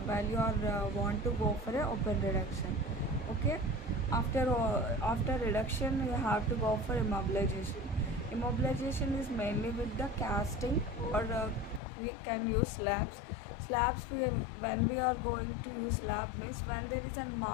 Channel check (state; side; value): drops out; right; at 11.8 s